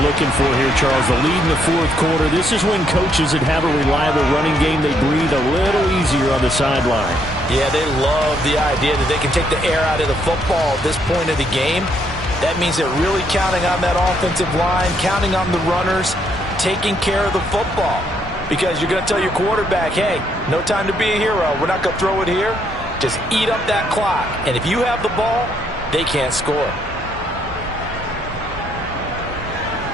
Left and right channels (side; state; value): both; normal; correlation 0.72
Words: looking for here, Charles. The lead in the fourth quarter. This is when coaches that have a reliable running game, they breathe a little easier on the sideline. Yeah, they love the idea that they can take the air out of the football at this point of the game. That means they're really counting on that offensive line, counting on the runners, taking care of the football. Because you're going to tell your quarterback, hey, no time to be a hero. We're not going to throw it here. Just eat up that clock. And if you have the ball, they can't score.